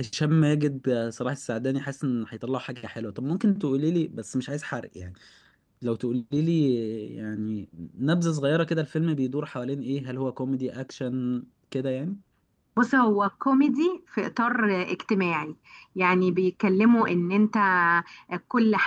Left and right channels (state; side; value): identical; both; correlation 1.00